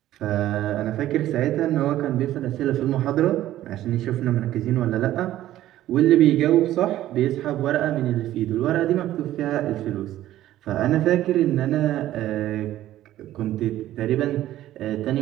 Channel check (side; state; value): left; quieter; 13.7 dB